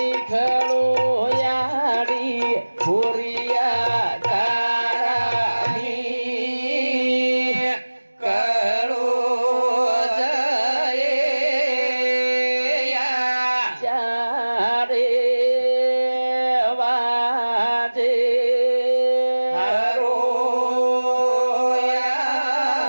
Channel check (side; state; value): both; inverted; correlation -1.00